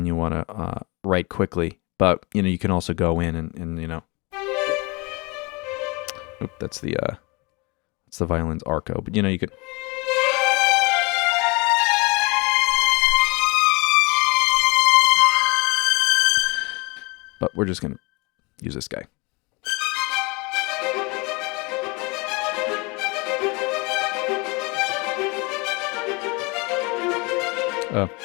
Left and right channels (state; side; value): quieter; right; 27.7 dB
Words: you want to write quickly. But you know, you can also go in and you know. Oop, that's the violin's arco. But you know, you could. But we're just gonna use this guy.